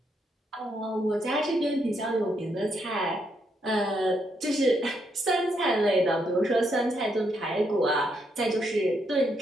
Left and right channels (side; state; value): both; normal; correlation 0.77